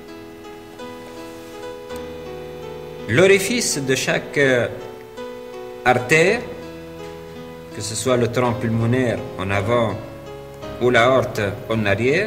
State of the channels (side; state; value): both; identical; correlation 1.00